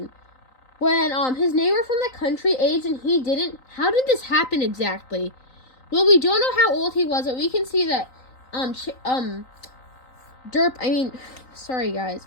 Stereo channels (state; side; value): late; right; 3.9 ms